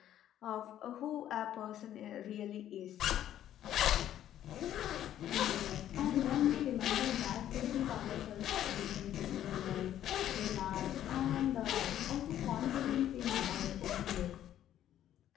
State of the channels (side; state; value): right; quieter; 11.5 dB